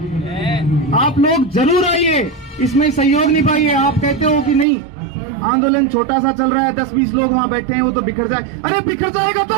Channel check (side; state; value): left; drops out; at 4.7 s